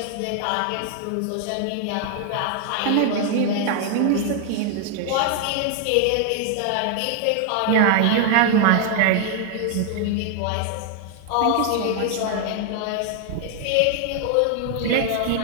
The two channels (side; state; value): both; different; correlation 0.00